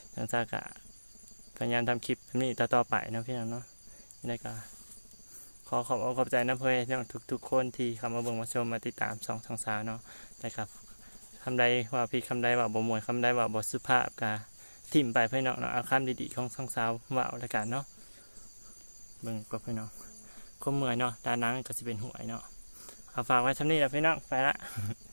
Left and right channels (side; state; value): both; inverted; correlation -1.00